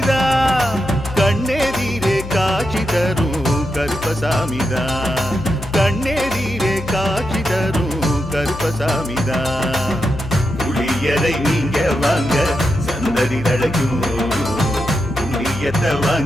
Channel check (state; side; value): noise; left; hum, 10 dB below the sound